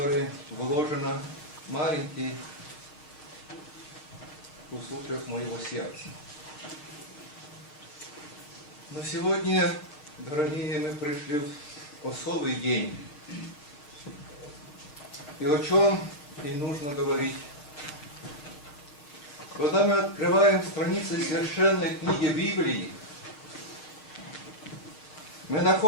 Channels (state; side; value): late; right; 6.6 ms